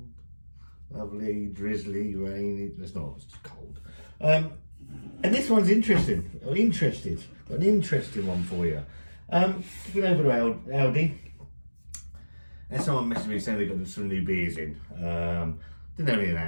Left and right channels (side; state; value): both; inverted; correlation -1.00